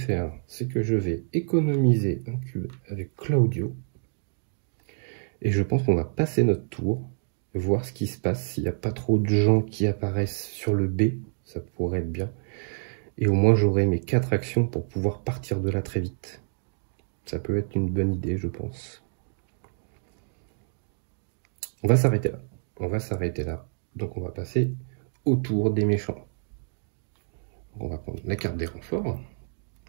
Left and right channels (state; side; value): silent; left; digital silence